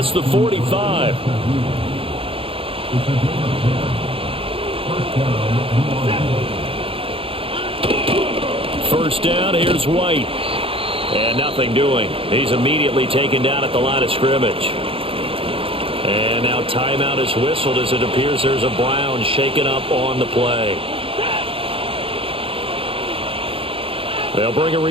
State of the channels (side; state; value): left; late; 0.27 ms